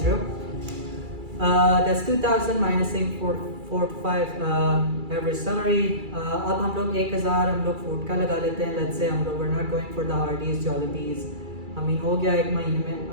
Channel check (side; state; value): left; late; 2.3 ms